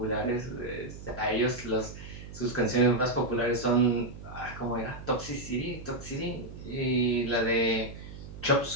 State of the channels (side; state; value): right; noise; hum, 13 dB below the sound